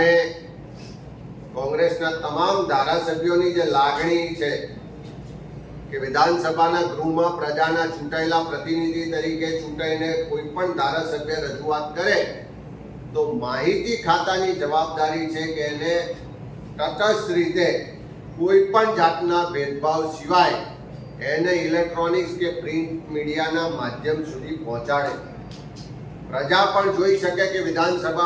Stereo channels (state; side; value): identical; both; correlation 1.00